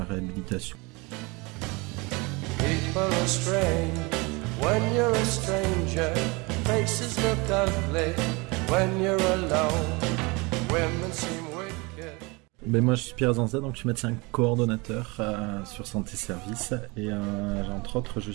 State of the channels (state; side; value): quieter; left; 26.5 dB